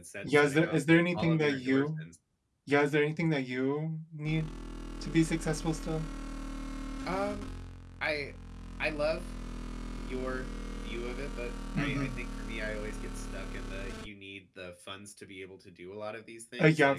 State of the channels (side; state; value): both; identical; correlation 1.00